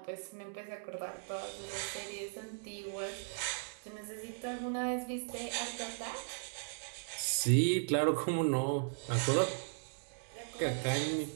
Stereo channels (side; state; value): left; silent; digital silence